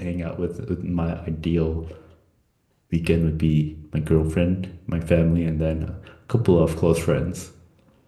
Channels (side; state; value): both; identical; correlation 1.00